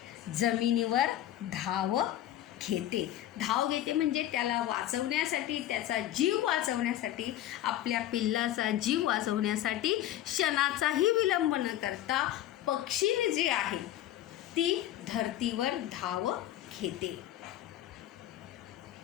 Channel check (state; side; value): quieter; right; 12.9 dB